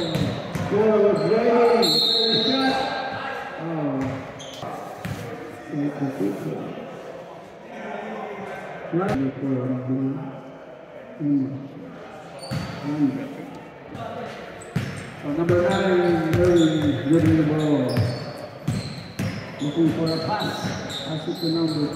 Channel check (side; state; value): both; identical; correlation 1.00